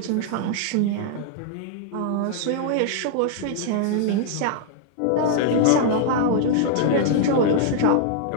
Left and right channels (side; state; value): both; different; correlation -0.01